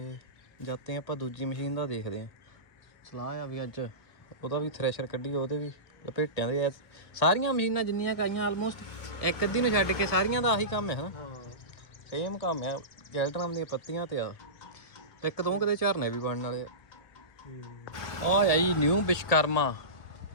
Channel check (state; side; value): late; right; 1.7 ms